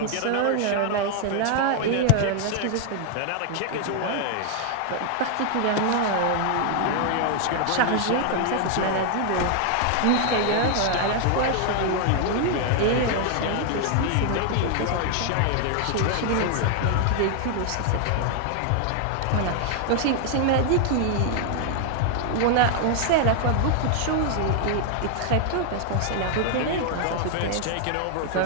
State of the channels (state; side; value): different; both; correlation 0.00